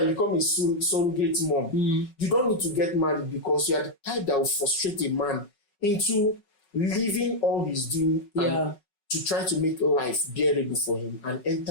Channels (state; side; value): late; right; 5.4 ms